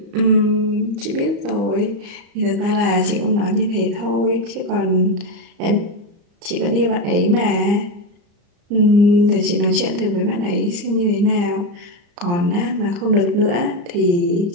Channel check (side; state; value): left; late; 34 ms